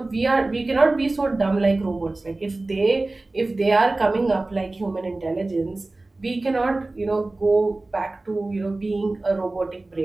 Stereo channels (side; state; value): left; quieter; 3.0 dB